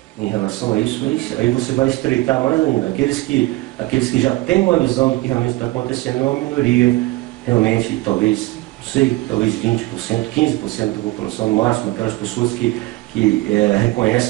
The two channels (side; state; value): left; quieter; 19.6 dB